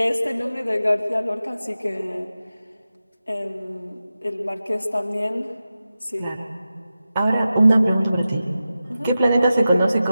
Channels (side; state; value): both; inverted; correlation -0.93